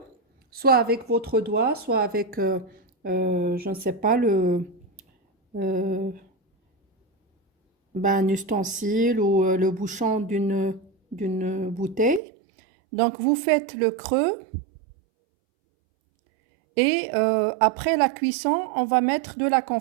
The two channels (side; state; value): left; drops out; at 12.2 s